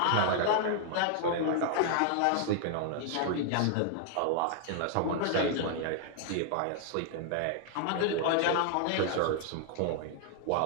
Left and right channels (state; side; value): different; both; correlation 0.00